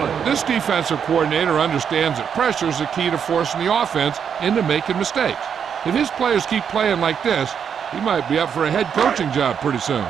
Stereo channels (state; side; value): quieter; left; 7.5 dB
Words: This defensive coordinator understands that pressure is the key to forcing the offense into making mistakes. If his players keep playing like this, he might be up for a head coaching job pretty soon.